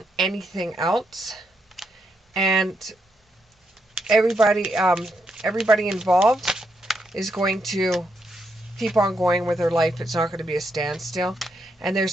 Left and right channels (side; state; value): both; normal; correlation 0.80